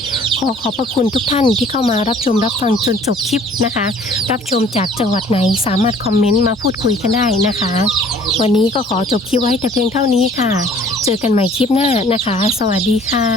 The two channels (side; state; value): both; normal; correlation 0.54